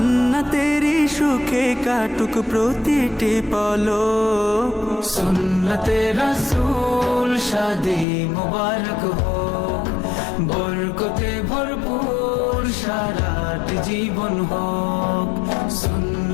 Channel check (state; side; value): drops out; right; at 8.1 s